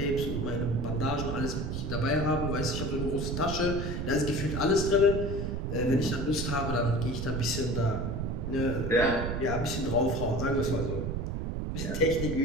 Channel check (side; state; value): right; noise; rumble, 2 dB below the sound